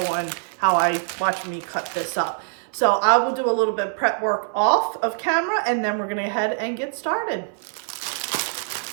on how I watch me cut this up. So I will do a little bit of prep work off of camera and then we're gonna go ahead and get started.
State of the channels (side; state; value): left; silent; 59 dB below the other